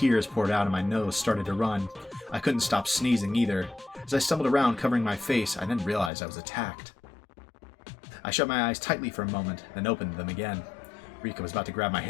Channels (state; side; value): drops out; right; at 6.1 s